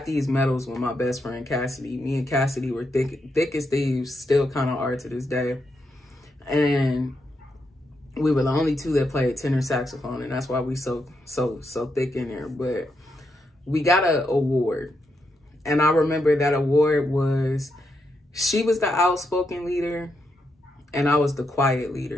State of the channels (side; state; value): both; normal; correlation 0.82